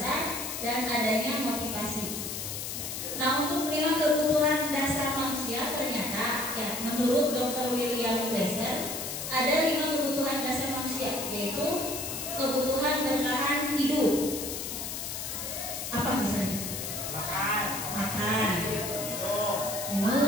dan adanya motivasi. Nah, untuk 5 kebutuhan dasar manusia ternyata ya menurut Dr. William Glasser ada 5 kebutuhan dasar manusia, yaitu kebutuhan bertahan hidup. Apa misalnya? Makan. Makan, Minum.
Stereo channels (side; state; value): left; noise; hiss, 5 dB below the sound